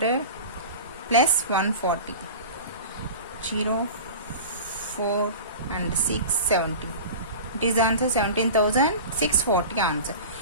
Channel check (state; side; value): inverted; both; correlation -0.34